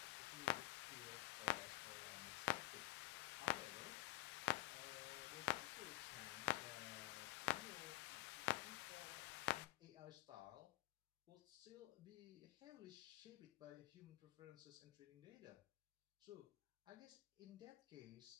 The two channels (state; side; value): quieter; right; 18.5 dB